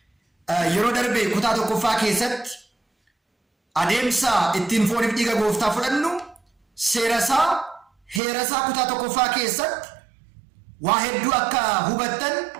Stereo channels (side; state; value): left; drops out; at 8.2 s